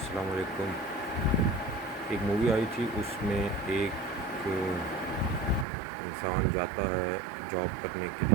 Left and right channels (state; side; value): drops out; left; at 5.7 s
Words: علیکم. ایک مووی آئی تھی، اس میں ایک انسان جاتا ہے جاب کرنے کے